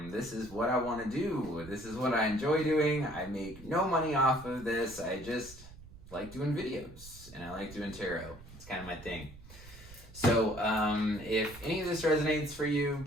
This is what I want to do. This is what I enjoy doing. I make no money off of this. I just like doing videos and I like doing tarot. It's kind of my thing. So if any of this resonates for you,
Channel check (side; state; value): right; noise; rumble, 18 dB below the sound